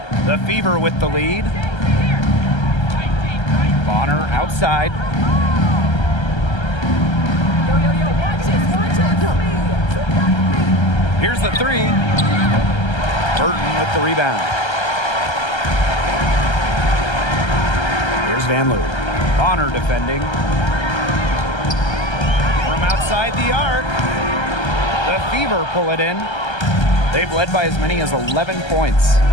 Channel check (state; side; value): late; right; 1.3 ms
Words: The Fever with the lead. Bonner outside. Here's the 3. Burton with the rebound. Here's Van Loo. Bonner defending. From outside the arc. The Fever pull it in. They've led by as many as 11 points.